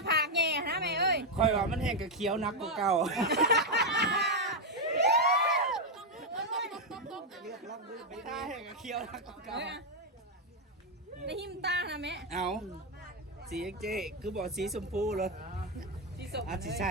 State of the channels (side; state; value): both; normal; correlation 0.02